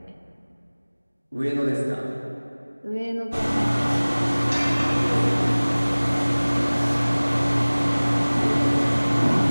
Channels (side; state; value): both; inverted; correlation -1.00